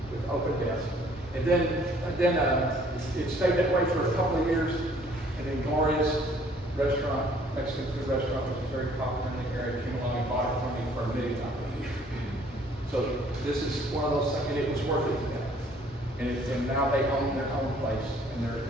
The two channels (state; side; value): normal; both; correlation 0.59